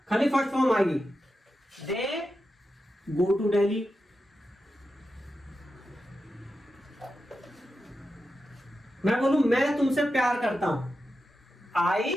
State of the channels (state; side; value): normal; both; correlation 0.90